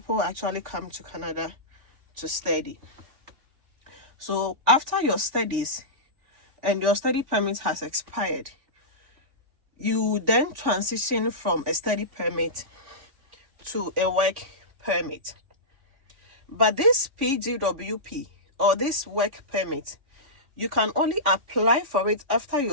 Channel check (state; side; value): late; left; 3.5 ms